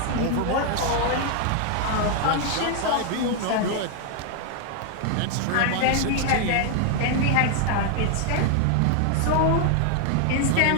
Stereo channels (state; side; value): different; both; correlation 0.00